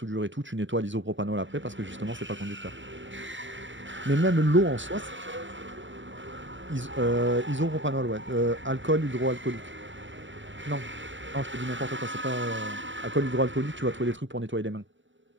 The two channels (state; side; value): late; left; 0.55 ms